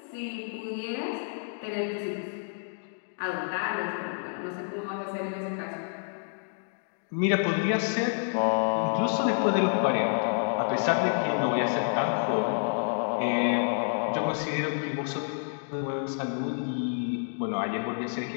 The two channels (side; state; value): right; silent; digital silence